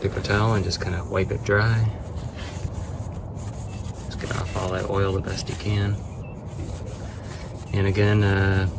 towel and just kind of wipe it dry. Just get off all that oil the best you can. And again,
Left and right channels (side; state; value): both; identical; correlation 1.00